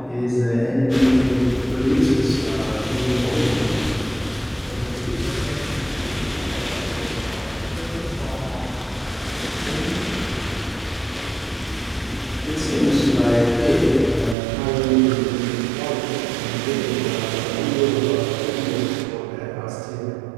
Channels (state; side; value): drops out; left; at 14.4 s